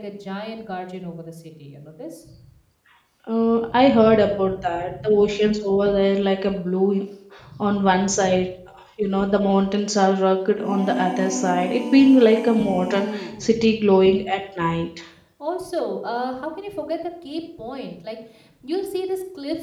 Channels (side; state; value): both; identical; correlation 1.00